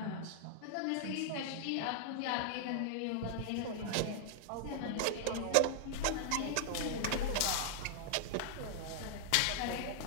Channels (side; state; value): both; different; correlation -0.01